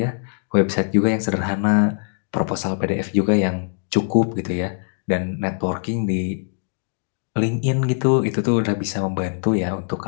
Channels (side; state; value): right; silent; 64 dB below the other